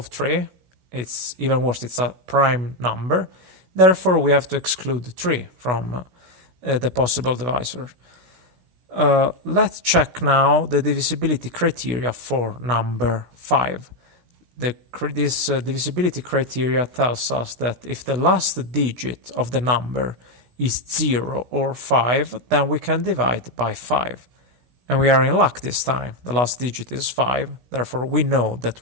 3. It's even worse, it's a prime number. Therefore, we have to exclude 3 from the possible divisor. Let's check now the divisibility criteria for number 5. This divisibility criteria tells us that if the last digit of the number is 0 or 5, then we can divide by 5. And we are in luck this time. The last digit is 5, therefore we know that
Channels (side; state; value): left; late; 16 ms